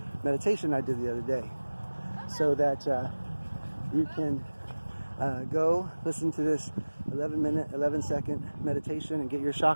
meditation I did the other day. So that you can go listen to this 11-minute, 11-second meditation and get your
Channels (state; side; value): inverted; both; correlation -1.00